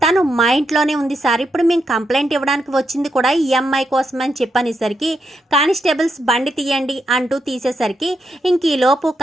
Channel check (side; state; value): both; normal; correlation 0.82